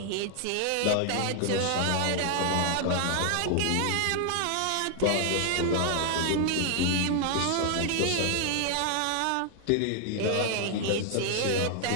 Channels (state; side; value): different; both; correlation 0.00